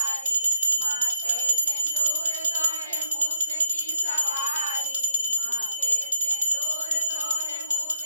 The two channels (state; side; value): inverted; both; correlation -0.67